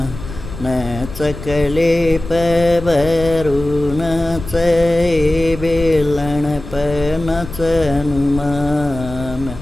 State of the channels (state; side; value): noise; left; rumble, 12 dB below the sound